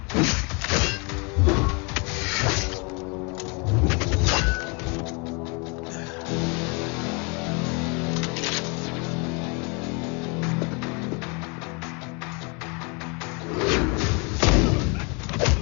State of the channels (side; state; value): right; quieter; 32.1 dB